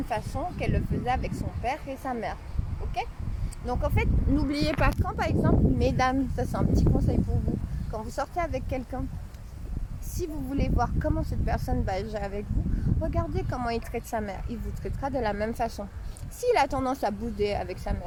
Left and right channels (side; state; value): both; identical; correlation 1.00